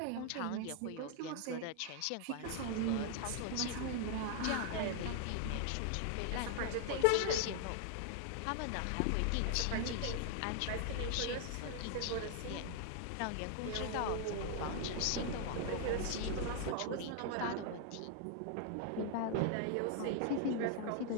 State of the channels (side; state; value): both; different; correlation 0.00